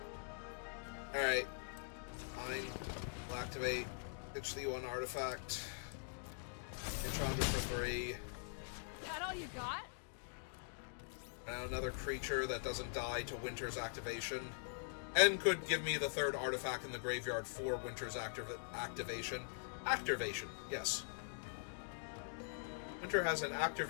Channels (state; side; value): silent; right; digital silence